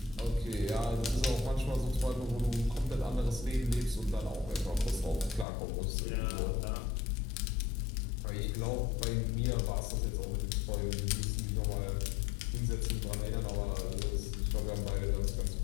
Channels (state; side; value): drops out; right; at 5.5 s